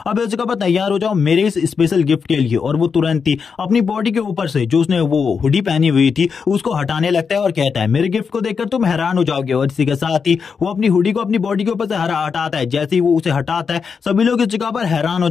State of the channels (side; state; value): right; quieter; 5.8 dB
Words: अब इस जगह पर तैयार हो जाओ मेरे इस स्पेशल गिफ्ट के लिए, और वो तुरंत ही अपनी बॉडी के ऊपर से जो उसने वो हुडी पहनी हुई थी उसको हटाने लगता है और कहता है मेरे गिफ्ट को देखकर तुम हैरान हो जाओगे, और इसी के साथ ही वो अपनी हुडी को अपनी बॉडी के ऊपर से हटाता है। जैसे ही वो उसे हटाता है सभी लोग इस जगह पर हैरान हो